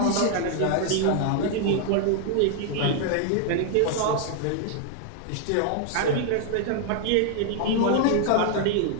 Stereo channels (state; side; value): different; both; correlation 0.00